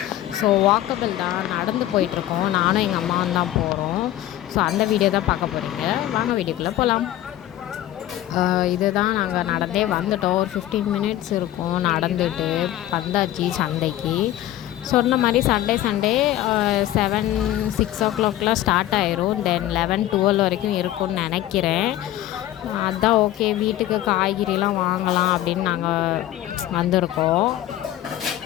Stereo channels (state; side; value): quieter; right; 13.7 dB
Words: ஸோ வாக்கபிள் தான், நடந்து போயிட்டுருக்கோம். நானும் எங்கள் அம்மாவும் தான் போகிறோம். ஸோ அந்த வீடியோ தான் பார்க்க போகிறீங்க. வாங்க வீடியோக்குள்ளே போகலாம். இதுதான் நாங்கள் நடந்தே வந்துட்டோம். ஒரு 15 மினிட்ஸ் இருக்கும் நடந்துட்டு வந்தாச்சு சந்தைக்கு. சொன்ன மாதிரி சண்டே 7-6 ஸ்டார்ட் ஆயிரும். தென் 11-12 வரைக்கும் இருக்கும்னு நினைக்கிறேன். அதுதான் ஓகே, வீட்டுக்கு காய்கறிலாம் வாங்கலாம் அப்படின்னு நாங்கள் வந்திருக்கோம்.